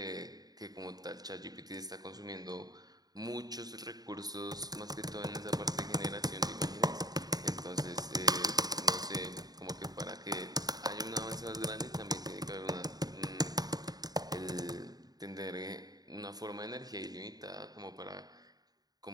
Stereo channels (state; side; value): late; left; 0.19 ms